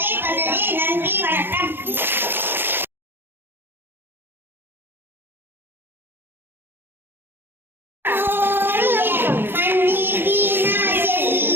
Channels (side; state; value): left; late; 0.10 ms